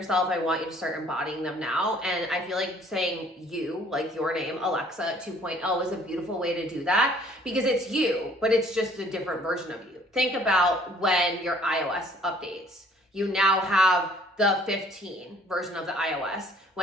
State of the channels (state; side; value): normal; both; correlation 0.58